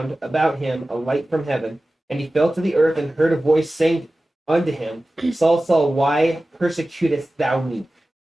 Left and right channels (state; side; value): normal; both; correlation 0.96